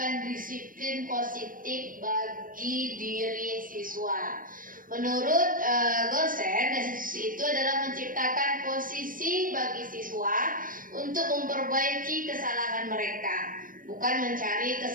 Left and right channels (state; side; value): late; left; 0.40 ms